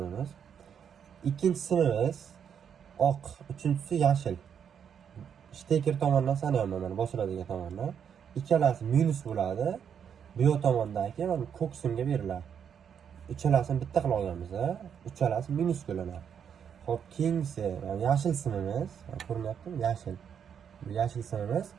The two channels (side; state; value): left; quieter; 7.9 dB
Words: Ikkinchi simimiz oq, uchinchisi yashil. Steker tomonidan sanayman, mana bosiladigan tomondan. Ikkalasi minus bo'ladi. Bu yoq tomondagi mana ko'k simga beriladi. Uchalasini bitta qilib olganmiz, uchalasi minus bo'linadi. Xo'p, keyingisi yashil simimiz, ko'rinyaptimi? Yashil. Bu yashil simimiz